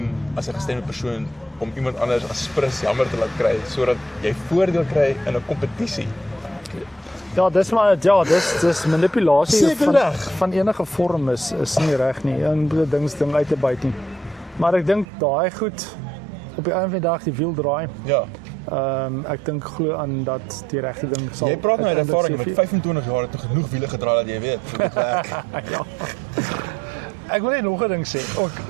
as 'n gestremde persoon om iemand anders as prins jammer te laat kry sodat jy voordeel kry in 'n kompetisie. Ja, dis manipulasie van enige vorm is nie reg nie. En ding uit te byt nie. Maar ek dink daai goed op die einde van die dag die wiel draai. Ja. Ek dink glo aan dat die regte ding sal. Jy praat nou uit ervaring met 25 jaar het genoeg wiele gedraai dat jy weet hoe dit werk. Ja. Ek wil net nog 'n ding sê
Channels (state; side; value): drops out; left; at 15.1 s